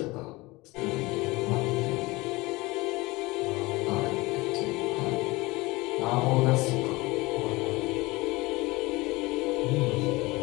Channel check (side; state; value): right; quieter; 22.2 dB